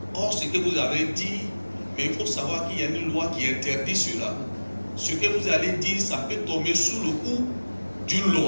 Or, ce que vous avez dit, mais il faut savoir qu'il y a une loi qui interdit cela. Ce que vous allez dire, ça peut tomber sous le coup d'une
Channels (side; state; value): both; inverted; correlation -1.00